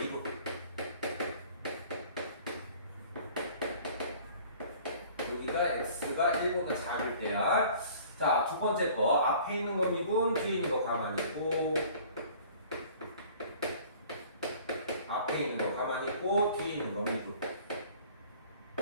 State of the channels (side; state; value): both; inverted; correlation -0.50